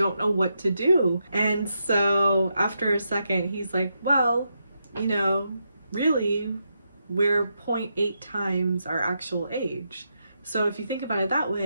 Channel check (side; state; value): both; inverted; correlation -0.84